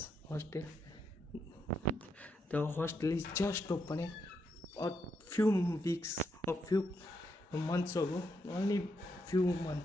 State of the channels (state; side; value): normal; both; correlation 0.80